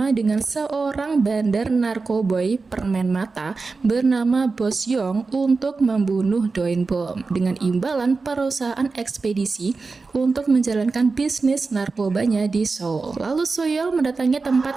dengan seorang bandar narkoboy permen mata bernama Bos Yong untuk membunuh Do In Bom dengan imbalan perusahaan ekspedisi untuk menjalankan bisnis narkobanya di Seoul. Lalu Suyol mendatangi tempat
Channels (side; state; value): left; quieter; 4.2 dB